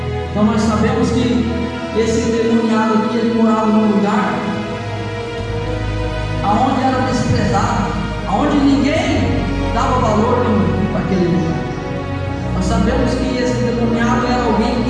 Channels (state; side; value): identical; both; correlation 1.00